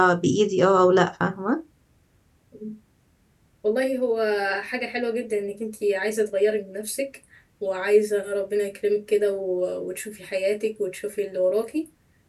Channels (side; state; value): both; identical; correlation 1.00